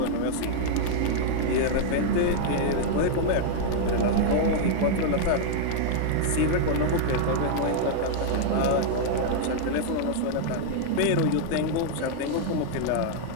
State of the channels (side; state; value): both; different; correlation -0.01